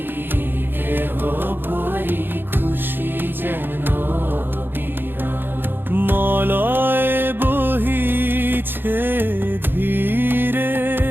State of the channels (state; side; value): late; left; 0.099 ms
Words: গেহ ভরি খুশি যেন বিরল। মলয় বহিছে ধীরে